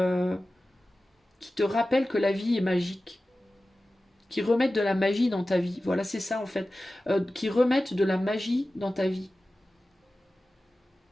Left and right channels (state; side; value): normal; both; correlation 0.95